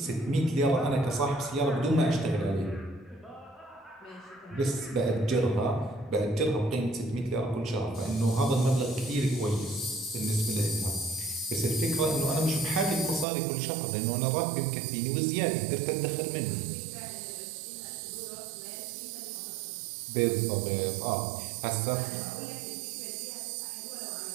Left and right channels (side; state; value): left; drops out; at 13.2 s